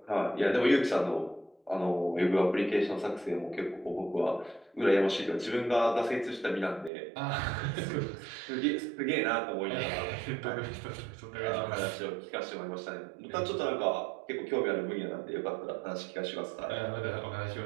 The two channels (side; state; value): left; drops out; at 6.9 s